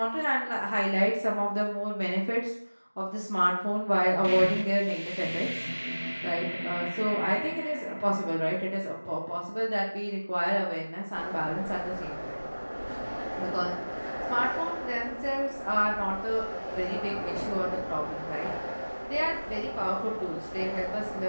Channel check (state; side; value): inverted; both; correlation -1.00